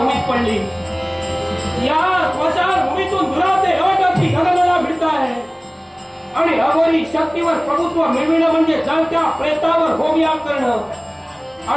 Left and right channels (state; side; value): identical; both; correlation 1.00